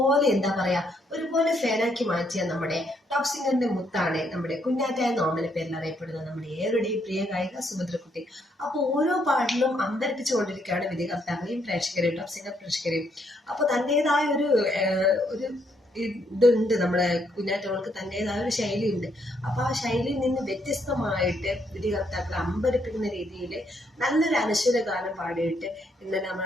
ഒരുപോലെ ഫാനാക്കി മാറ്റിയ നമ്മുടെ ടോപ്പ് സിംഗറിന്റെ മുത്താണ് നമ്മുടെ കുഞ്ഞാറ്റ എന്ന ഓമന പേരിൽ അറിയപ്പെടുന്ന നമ്മുടെ ഏവരുടെയും പ്രിയ ഗായിക സുഭദ്രക്കുട്ടി. അപ്പൊ ഓരോ പാട്ടിലും അമ്പരപ്പിച്ചുകൊണ്ടിരിക്കുകയാണ് വിധികർത്താക്കളെയും പ്രേക്ഷകരെയും ടോപ്പ് സിംഗർ പ്രേക്ഷകരെയും. അപ്പൊ തന്റേതായ ഒരു ഇതുണ്ട്, നമ്മുടെ കുഞ്ഞാറ്റോൾക്ക് തന്റേതായ ഒരു ശൈലി ഉണ്ട്. അപ്പൊ ആ ശൈലിയിൽ നിന്ന് വ്യത്യസ്തമായിട്ട് വിധികർത്താക്കളെ അമ്പരപ്പിക്കുന്ന രീതിയിൽ നല്ലൊരു അനശ്വര ഗാനം പാടിയിട്ട് ഇന്നലെ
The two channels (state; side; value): normal; both; correlation 0.73